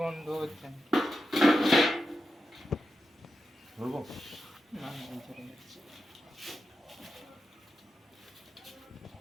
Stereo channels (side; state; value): both; normal; correlation 0.90